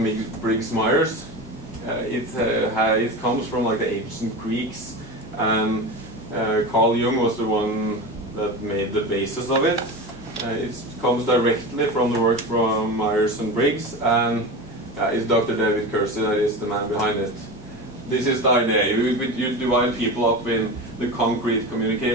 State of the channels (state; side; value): normal; both; correlation 0.27